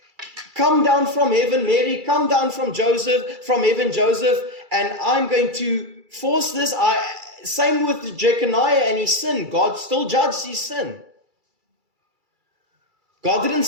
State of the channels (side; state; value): left; late; 2.3 ms